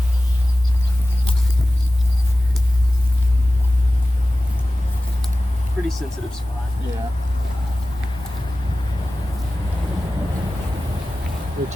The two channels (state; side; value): normal; both; correlation 0.96